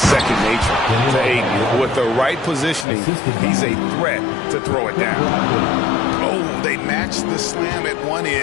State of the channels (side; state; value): right; drops out; at 2.9 s